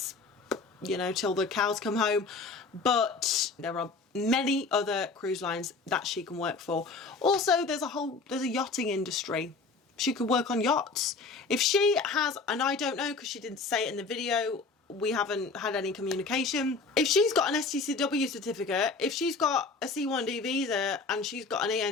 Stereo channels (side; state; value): right; quieter; 4.1 dB